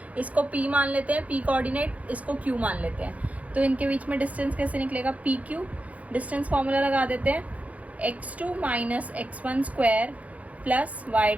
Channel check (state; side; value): late; left; 0.068 ms